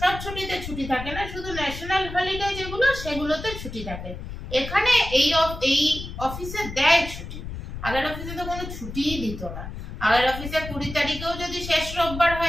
সব ছুটিতে ছুটি থাকে না, শুধু ন্যাশনাল হলিডে যেগুলো সেগুলোতে ছুটি থাকে। এখানে এই অফিসে দেয় ছুটি। আগের অফিসে তো কোনো ছুটিই দিত না। আগের অফিসে 20 তারিখেও যদি শেষ রোববার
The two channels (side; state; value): left; noise; rumble, 9 dB below the sound